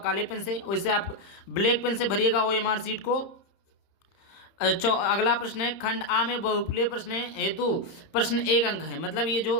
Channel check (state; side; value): late; right; 30 ms